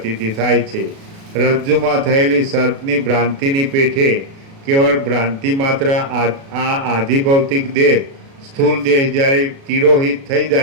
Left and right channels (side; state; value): left; late; 36 ms